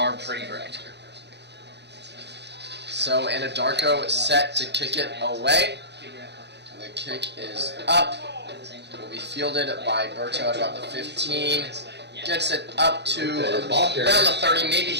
pretty great. So Anadarko is set to kick it away. The kick is up. Will be fielded by Berto at about the 15. Gets it up to around the 30, maybe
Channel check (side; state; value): left; late; 0.50 ms